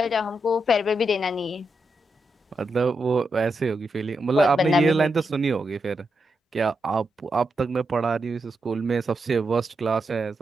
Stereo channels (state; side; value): normal; both; correlation 0.85